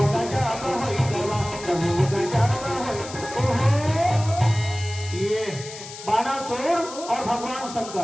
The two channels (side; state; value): left; noise; hiss, 13 dB below the sound